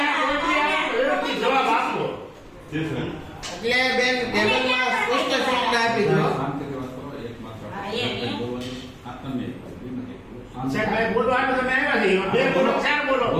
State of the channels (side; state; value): both; identical; correlation 1.00